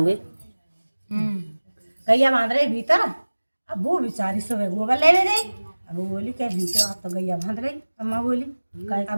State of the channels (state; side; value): inverted; both; correlation -1.00